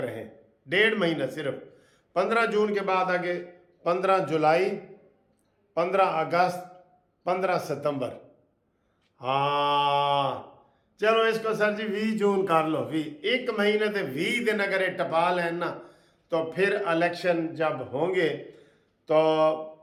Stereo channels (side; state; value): both; identical; correlation 1.00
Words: 1.5 مہینہ صرف. 15 جون کے بعد آگے 15 جولائی, 15 اگست, 15 ستمبر. ہاں چلو اس کو سر جی 20 جون کر لو. 1 مہینے تے 20 دن اگر یہ ٹپا لیں نا تو پھر الیکشن جب ہوں گے تو